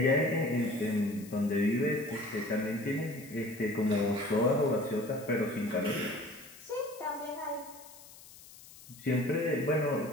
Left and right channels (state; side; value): noise; left; hiss, 20 dB below the sound